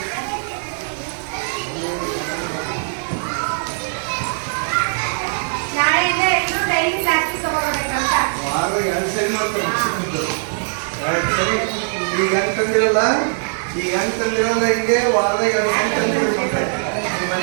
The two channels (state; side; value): silent; left; digital silence